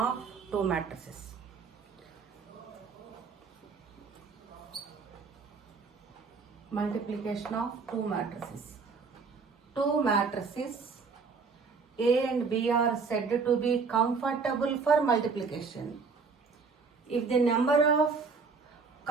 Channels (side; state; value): left; quieter; 4.9 dB